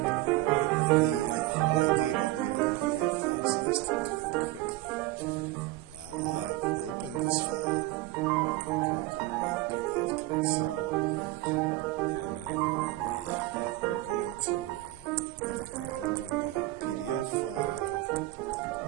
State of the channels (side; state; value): left; quieter; 17.7 dB